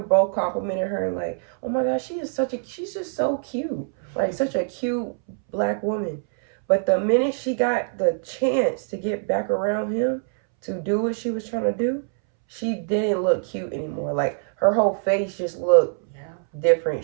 both complimenting her and like, oh my gosh, she's just so cute, like such a cute black woman. But the minute she got the chance to get back around him to do what she was trying to do, she didn't look cute anymore. Like her whole face just looked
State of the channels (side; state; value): left; silent; 63 dB below the other